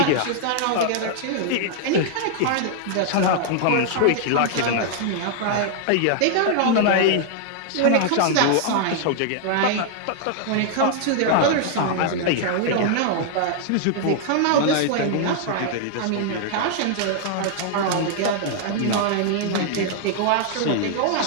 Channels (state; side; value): different; both; correlation -0.01